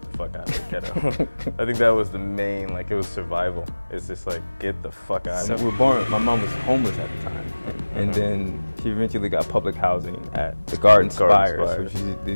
the fuck out of the ghetto. I think that was the main, it was survival. It's just like, get the fuck out of We were born, my mom was homeless at the time. And then she eventually got public housing at the Garden Spires, which is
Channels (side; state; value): both; inverted; correlation -1.00